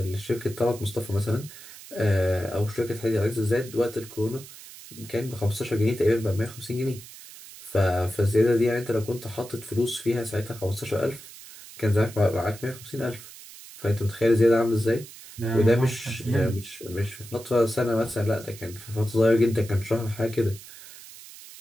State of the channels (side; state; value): right; noise; hiss, 17 dB below the sound